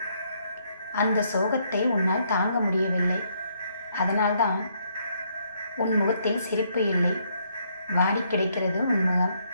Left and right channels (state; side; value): inverted; both; correlation -0.72